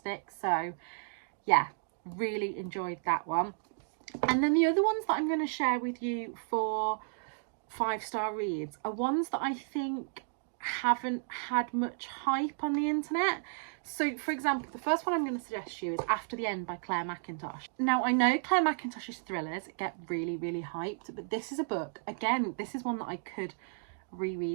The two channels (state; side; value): silent; left; digital silence